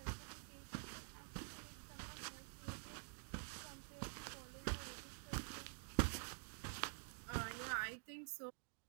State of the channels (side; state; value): left; silent; digital silence